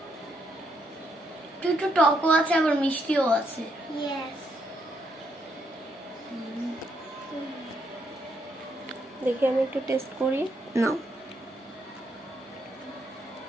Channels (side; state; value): both; normal; correlation 0.76